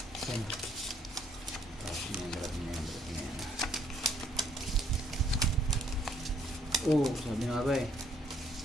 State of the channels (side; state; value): both; normal; correlation 0.66